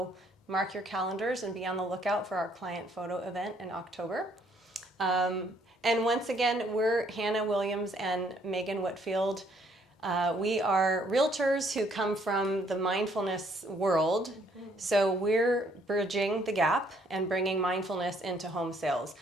mark your calendars and be on the lookout for our client photo event in October. And once again, we're Hannah Williams and Meagan Whitfield. We are realtors who come from the mindfulness world. So we're bridging the gap and bringing mindfulness into home sales.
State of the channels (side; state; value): both; normal; correlation 0.66